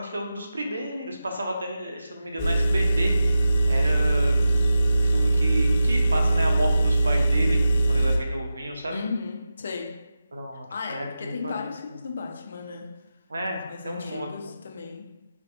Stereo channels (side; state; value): both; inverted; correlation -0.92